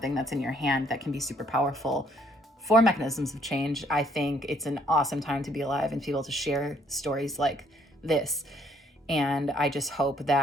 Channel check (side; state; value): both; normal; correlation 0.66